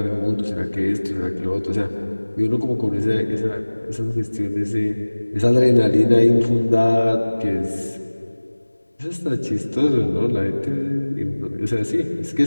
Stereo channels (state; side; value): inverted; both; correlation -1.00